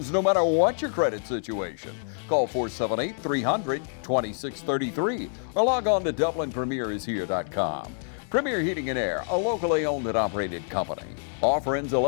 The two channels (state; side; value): silent; right; digital silence